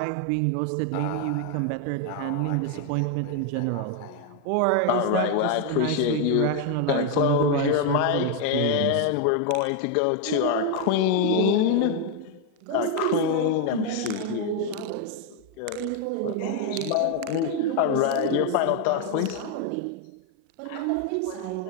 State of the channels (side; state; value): both; different; correlation 0.01